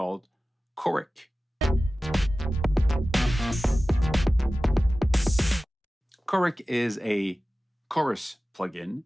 Choric. Choric is a chorus plugin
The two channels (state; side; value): normal; both; correlation 0.96